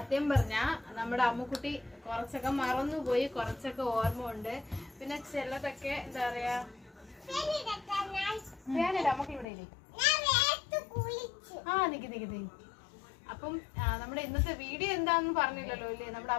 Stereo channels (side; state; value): right; drops out; at 9.5 s